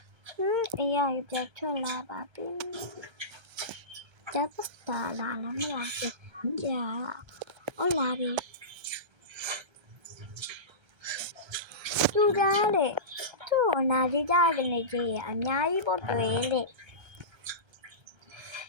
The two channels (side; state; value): left; late; 1.3 ms